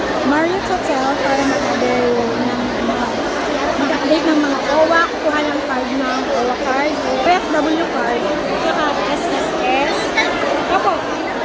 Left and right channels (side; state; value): both; identical; correlation 1.00